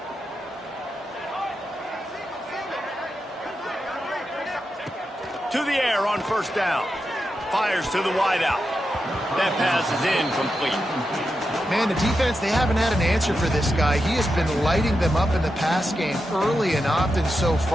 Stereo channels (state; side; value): normal; both; correlation 0.88